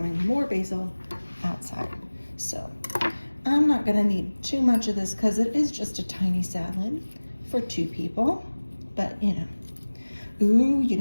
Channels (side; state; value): both; inverted; correlation -1.00